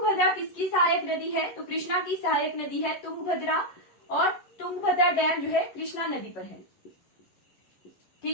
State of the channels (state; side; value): late; right; 11 ms